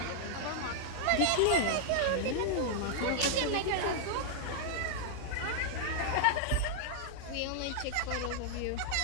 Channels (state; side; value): different; both; correlation -0.01